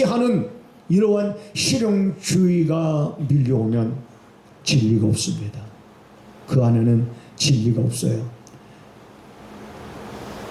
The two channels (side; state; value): both; identical; correlation 1.00